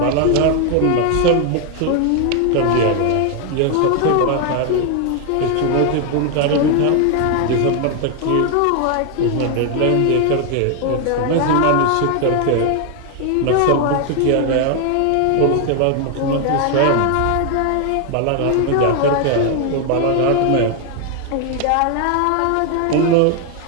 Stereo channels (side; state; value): both; different; correlation 0.00